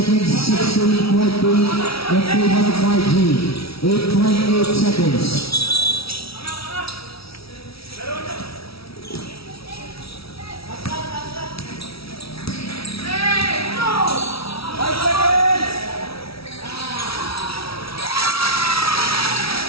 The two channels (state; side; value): late; right; 0.76 ms